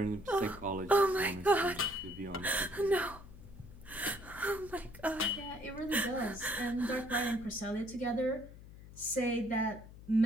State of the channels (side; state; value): left; noise; hum, 17 dB below the sound